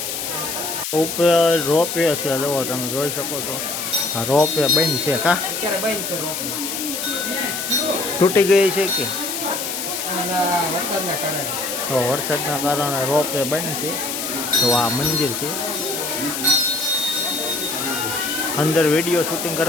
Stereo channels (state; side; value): noise; left; hiss, 4 dB below the sound